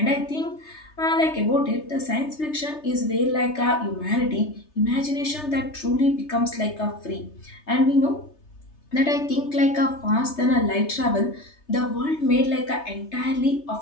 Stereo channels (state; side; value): late; right; 3.3 ms